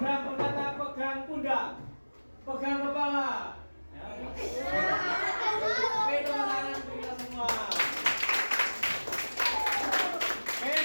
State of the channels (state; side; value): inverted; both; correlation -1.00